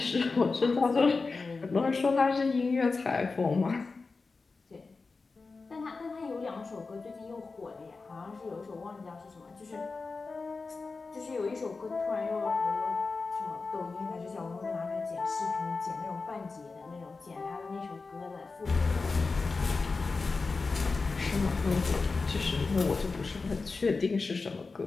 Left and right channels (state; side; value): quieter; right; 4.1 dB